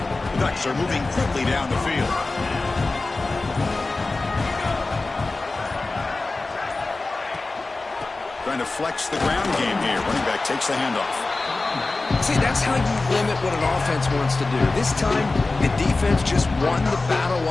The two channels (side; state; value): right; quieter; 3.4 dB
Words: The Ducks are moving quickly down the field. Trying to flex the ground game here. Running back takes the handoff. See, that's how you limit what an offense wants to do. This time, the defense just won the battle